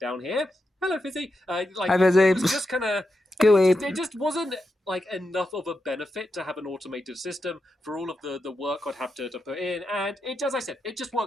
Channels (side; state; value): both; normal; correlation 0.87